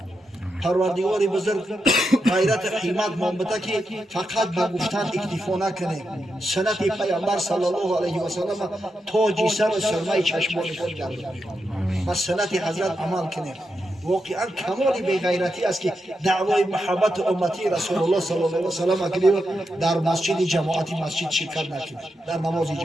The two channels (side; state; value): both; normal; correlation 0.86